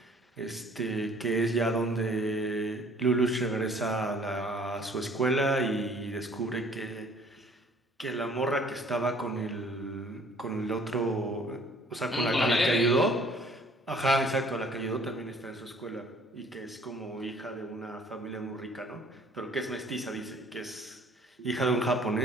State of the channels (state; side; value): normal; both; correlation 0.56